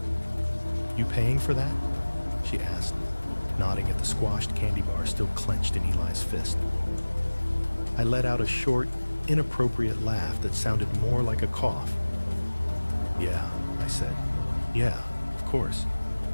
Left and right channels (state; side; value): inverted; both; correlation -1.00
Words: "You paying for that?" she asked, nodding at the squashed candy bar still clenched in Eli's fist. I let out a short, inappropriate laugh that sounded more like a cough. "Yeah," I said. "Yeah, of course."